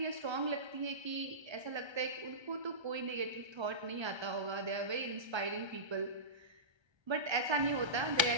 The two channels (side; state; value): left; late; 1.3 ms